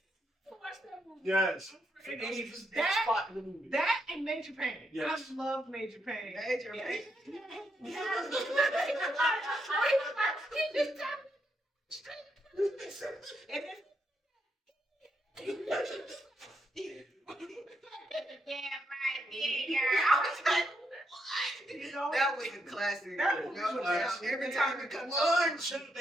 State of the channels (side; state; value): both; normal; correlation 0.80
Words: Watch that movie. Yes. That, in the movie. that and Major Payne. Yes. I love Major Payne. Major Payne. You know, That was a classic. That was No a doubt. classic. Every time it comes One on.